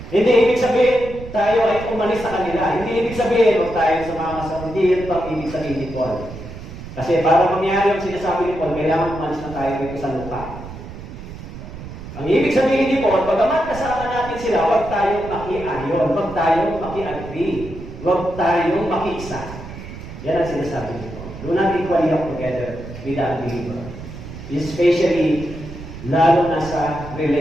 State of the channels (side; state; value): right; noise; rumble, 12 dB below the sound